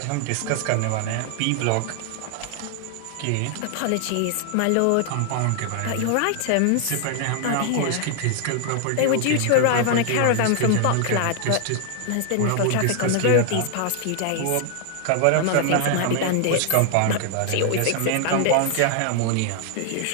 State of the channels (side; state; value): both; different; correlation 0.00